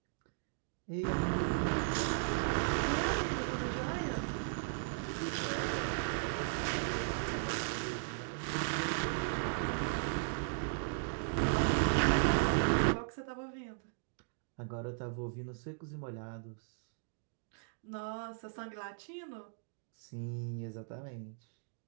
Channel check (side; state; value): left; silent; digital silence